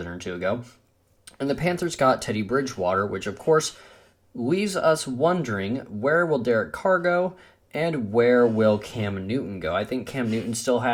or two ago. And the Panthers got Teddy Bridgewater, which of course leaves us wondering, where will Derek Carr go and where will Cam Newton go? I think Cam Newton still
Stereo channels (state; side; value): identical; both; correlation 1.00